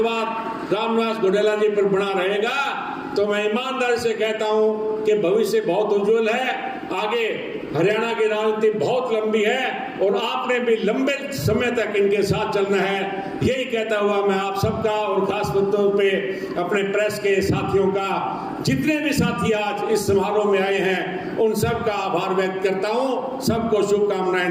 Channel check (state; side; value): identical; both; correlation 1.00